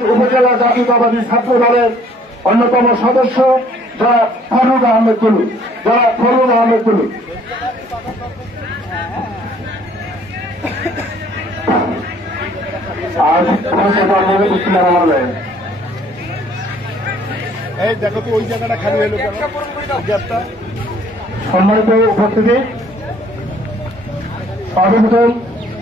উপজেলা জাতীয়তাবাদী ছাত্র দলের অন্যতম সদস্য যারা ফরুদ আহমেদ তুলু এই দেখো তো ওই জায়গাটা খালি হলো কেন? সম্মানিত উপস্থিতি, সর্বপ্রথম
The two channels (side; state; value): both; normal; correlation 0.59